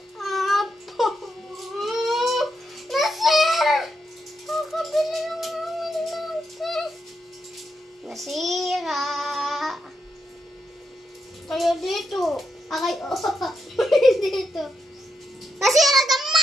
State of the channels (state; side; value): normal; both; correlation 0.83